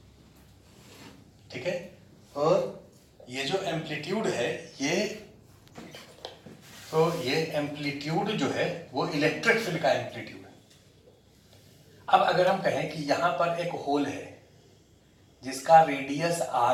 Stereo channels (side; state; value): both; identical; correlation 1.00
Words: ठीक है। और ये जो एम्पलीट्यूड है, ये एम्पलीट्यूड जो है वो इलेक्ट्रिक फील्ड का एम्पलीट्यूड है। अब अगर हम कहें कि यहां पर एक होल है जिसका रेडियस